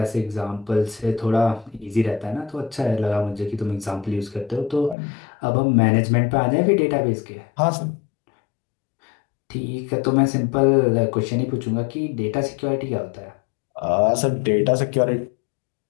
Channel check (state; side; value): drops out; right; at 5.0 s